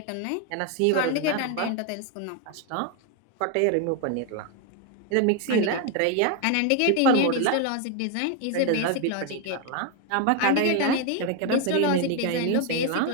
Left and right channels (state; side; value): different; both; correlation 0.01